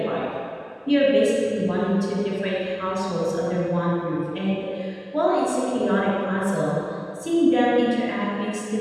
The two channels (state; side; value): identical; both; correlation 1.00